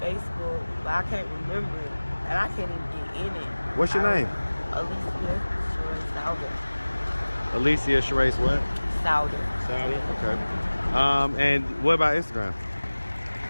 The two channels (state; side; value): inverted; both; correlation -1.00